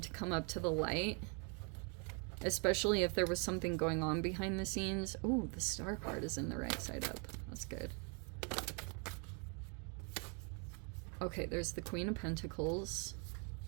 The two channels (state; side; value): quieter; left; 36.4 dB